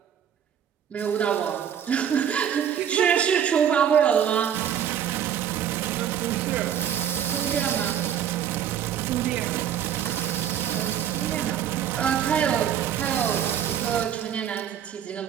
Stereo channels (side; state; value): left; quieter; 9.3 dB